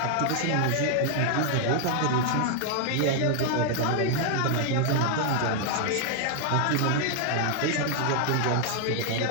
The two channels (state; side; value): different; both; correlation 0.00